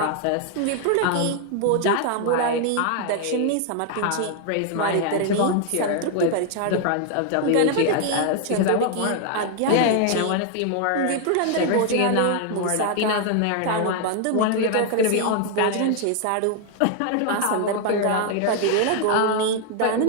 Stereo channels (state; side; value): different; both; correlation 0.00